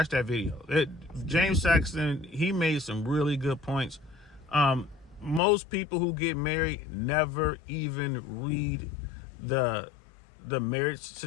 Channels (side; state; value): right; drops out; at 5.4 s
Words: that video. James Saxon, he made some really good points. Most people who get married never even read the marriage